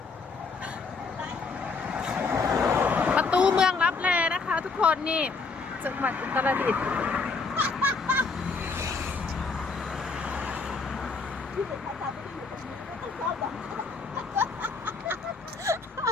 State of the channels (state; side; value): quieter; right; 4.4 dB